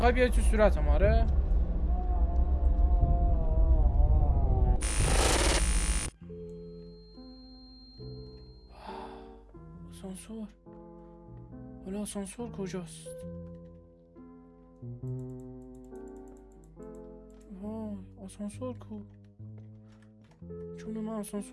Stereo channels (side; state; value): both; identical; correlation 1.00